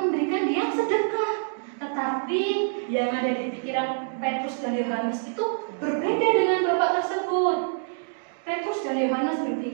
dia sedekah. Tetapi yang ada di pikiran Petrus dan Yohanes itu berbeda dengan Bapak tersebut. Petrus dan Yohanes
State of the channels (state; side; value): silent; left; digital silence